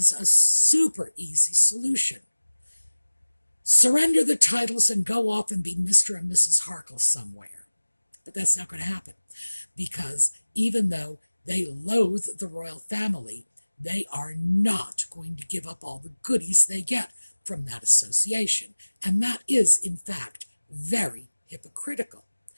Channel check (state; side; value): inverted; both; correlation -1.00